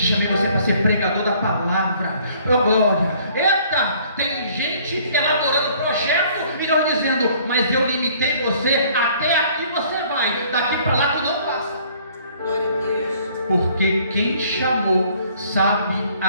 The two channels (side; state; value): both; inverted; correlation -0.59